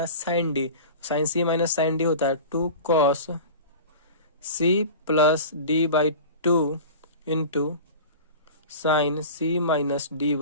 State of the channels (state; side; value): inverted; both; correlation -0.36